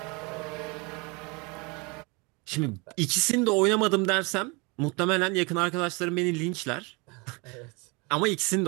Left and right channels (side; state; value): left; quieter; 28.9 dB